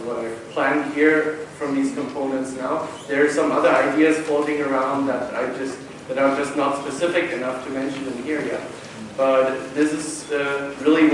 I've planned here from these components now. There are some other ideas floating around that are just not specific enough to mention in here yet. But this is really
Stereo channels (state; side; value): identical; both; correlation 1.00